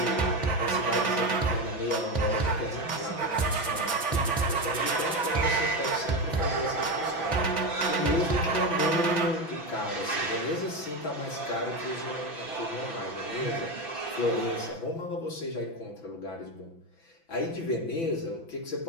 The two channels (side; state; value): right; late; 6.0 ms